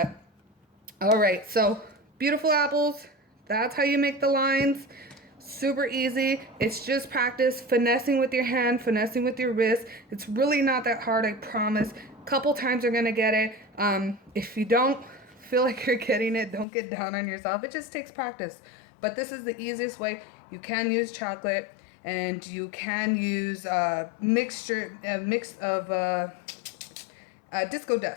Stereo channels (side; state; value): right; drops out; at 16.7 s